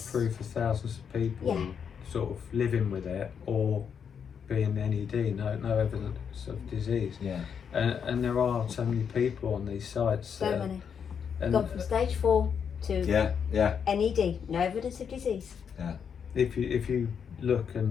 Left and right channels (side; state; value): right; quieter; 7.2 dB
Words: of thousands of people Yeah. sort of living with it or being NED, no evidence of disease. yeah, And there are so many people on these sites. So many. And Gone from stage 4 to yeah. NED, no evidence of disease. if you look and